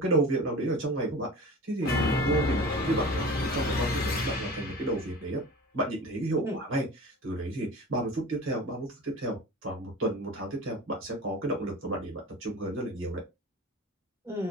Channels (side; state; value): both; normal; correlation 0.36